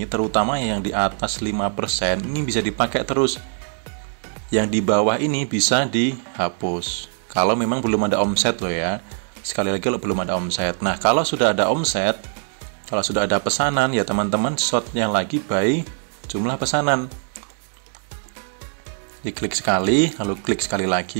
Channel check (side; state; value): left; silent; 64 dB below the other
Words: terutama yang di atas 5%, ini bisa dipakai terus. Yang di bawah ini bisa dihapus. Kalau memang belum ada omset loh ya. Sekali lagi kalau belum ada omset. Nah, kalau sudah ada omset, kalau sudah ada pesanan, ya teman-teman sortnya lagi by jumlah pesanan. Diklik sekali, lalu klik sekali